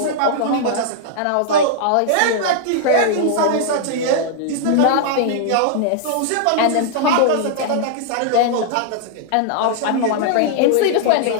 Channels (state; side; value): different; both; correlation -0.01